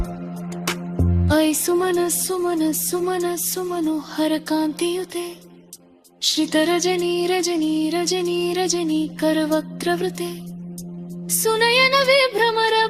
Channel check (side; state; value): both; identical; correlation 1.00